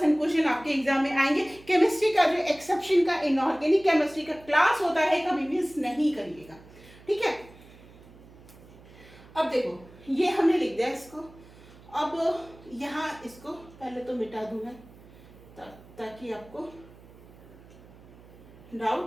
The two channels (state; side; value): noise; right; hum, 22 dB below the sound